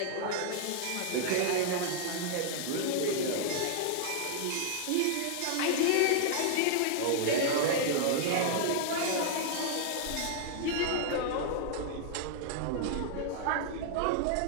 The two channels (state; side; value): different; both; correlation -0.01